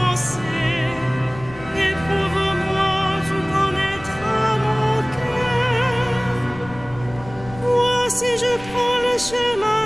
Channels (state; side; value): noise; left; rumble, 17 dB below the sound